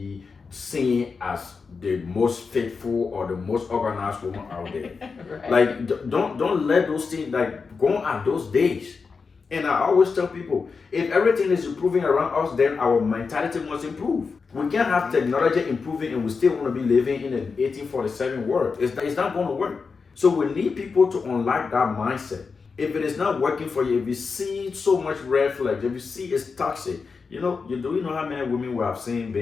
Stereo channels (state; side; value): quieter; right; 5.0 dB